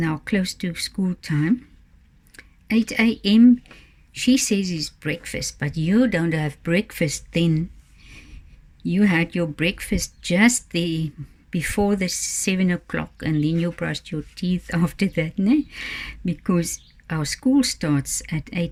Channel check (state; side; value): identical; both; correlation 1.00